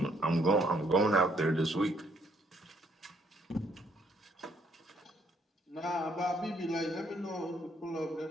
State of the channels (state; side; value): normal; both; correlation 0.68